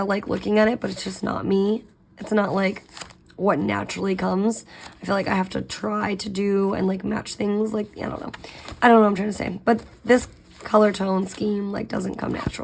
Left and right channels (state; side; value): identical; both; correlation 1.00